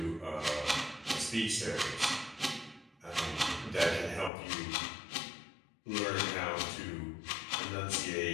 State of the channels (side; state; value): right; drops out; at 4.3 s